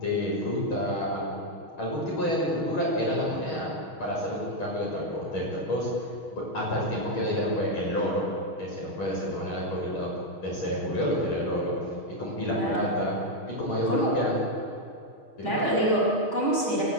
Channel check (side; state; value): right; late; 6.3 ms